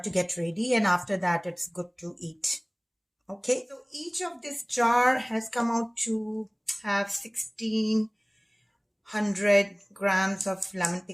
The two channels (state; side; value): identical; both; correlation 1.00